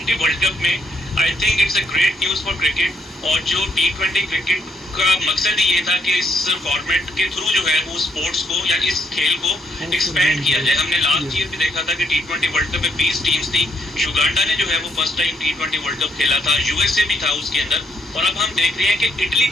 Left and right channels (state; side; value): normal; both; correlation 0.73